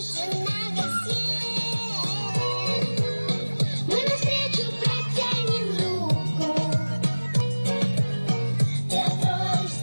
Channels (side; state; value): both; inverted; correlation -1.00